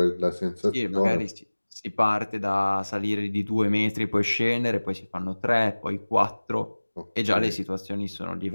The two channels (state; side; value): inverted; both; correlation -1.00